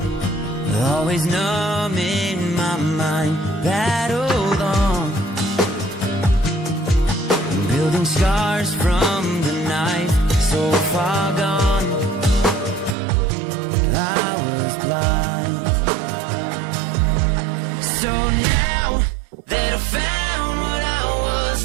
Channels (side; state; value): left; drops out; at 13.0 s